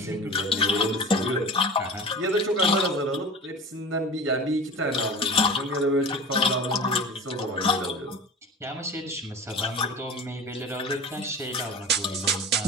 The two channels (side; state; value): both; normal; correlation 0.34